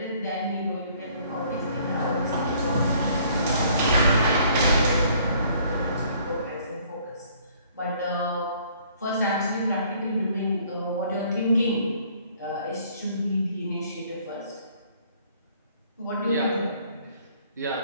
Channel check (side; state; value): both; inverted; correlation -0.60